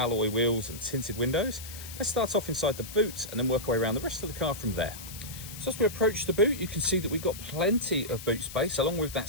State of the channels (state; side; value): noise; left; hiss, 12 dB below the sound